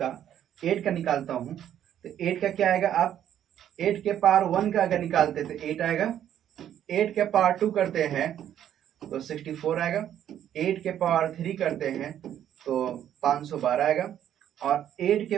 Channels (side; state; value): left; quieter; 10.5 dB